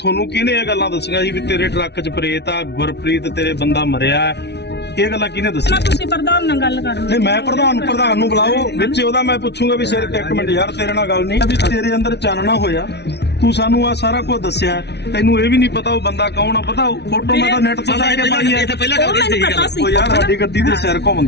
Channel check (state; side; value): late; right; 0.49 ms